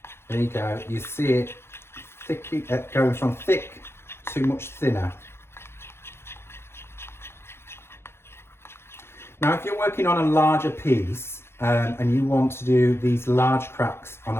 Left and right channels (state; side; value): late; right; 0.12 ms